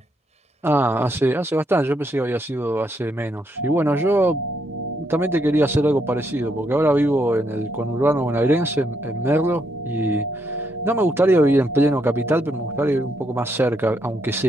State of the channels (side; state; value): both; normal; correlation 0.76